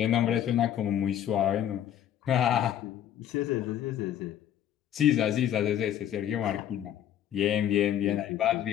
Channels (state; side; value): quieter; right; 10.5 dB